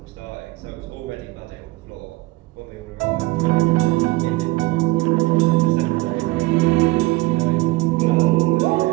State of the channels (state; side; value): quieter; left; 21.1 dB